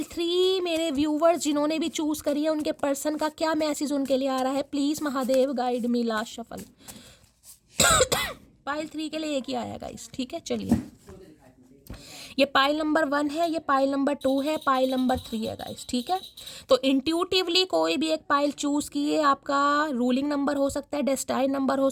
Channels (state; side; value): identical; both; correlation 1.00